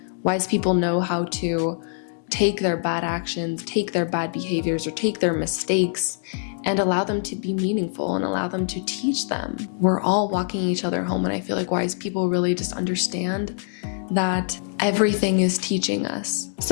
Wise people know how to take their bad actions, take their bad behaviors, or take their mistakes and allow them to be meaningful and allow them to teach them. We're all walking each other home, and I feel like wise people really just understand that everything is teaching us.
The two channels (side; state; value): right; silent; digital silence